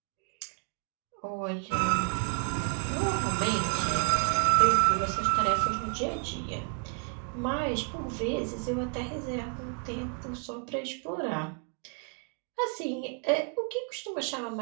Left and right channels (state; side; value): quieter; left; 39.7 dB